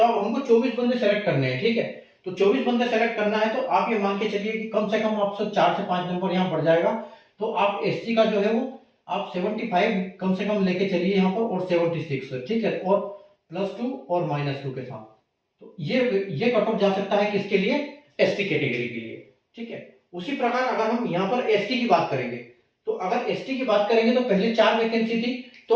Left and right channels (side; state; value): both; identical; correlation 1.00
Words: अब हमको 24 बंदे सेलेक्ट करने हैं। ठीक है, तो 24 बंदे सेलेक्ट करना है, तो आप ये मान के चलिए कि कम से कम आपसे 4 से 5 नंबर यहाँ बढ़ जाएगा। तो आप एससी का जो है वो आप 75 कम से कम लेके चलिए यहाँ पर, और 76। ठीक है, और +2 और -2 के साथ, तो ये कट ऑफ जा सकता है किसके लिए, एसटी कैटेगरी के लिए। ठीक है, उसी प्रकार अगर हम यहाँ पर एसटी की बात करेंगे, तो अगर एसटी की बात करेंगे तो पहले 4 वैकेंसी थी,